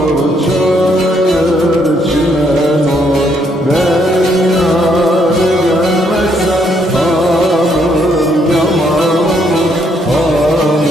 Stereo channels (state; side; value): normal; both; correlation 0.72